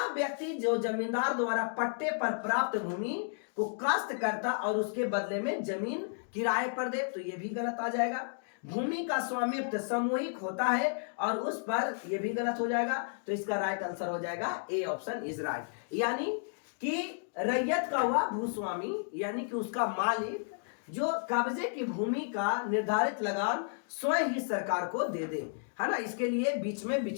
व्यक्ति जो जमींदार द्वारा पट्टे पर प्राप्त भूमि को काश्त करता और उसके बदले में जमीन किराए पर दे, तो ये भी गलत आ जाएगा। भूमि का स्वामित्व सामूहिक होता है और उस पर, ये भी गलत हो जाएगा। तो इसका राइट आंसर हो जाएगा ए, ऑप्शन इज राइट। यानी कि रैयत का हुआ भूस्वामी, यानी कि उसका मालिक जो कब्जे की भूमि का निर्धारित लगान स्वयं ही सरकार को दे दे, है ना। इसके लिए बीच में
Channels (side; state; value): right; silent; digital silence